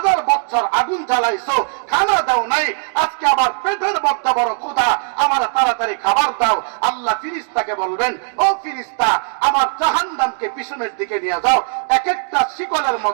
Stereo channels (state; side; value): silent; left; digital silence